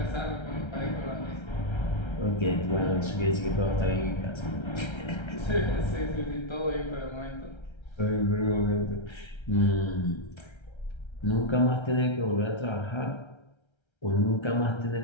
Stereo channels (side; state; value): right; late; 1.3 ms